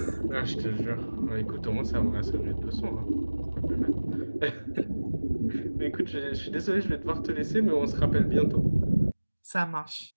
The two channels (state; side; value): inverted; both; correlation -1.00